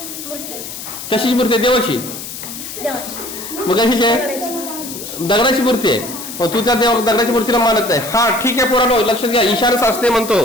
कशाची मूर्ती आहे? देवाची. देवाची. मग कशाची आहे? दगडाची. दगडाची मूर्ती आहे. मग तू त्या दगडाची मूर्तीला मानत नाही. हा ठीक आहे पोरांनो, लक्षात घ्या.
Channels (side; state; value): left; noise; hiss, 10 dB below the sound